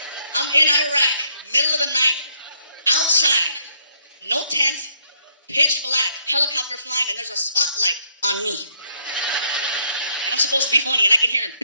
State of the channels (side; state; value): both; inverted; correlation -0.70